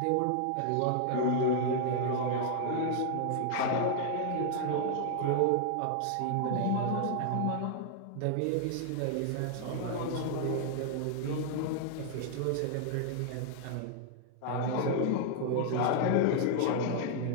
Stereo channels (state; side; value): different; both; correlation -0.01